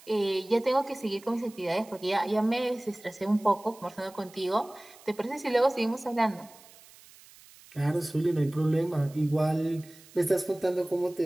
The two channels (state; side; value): noise; right; hiss, 23 dB below the sound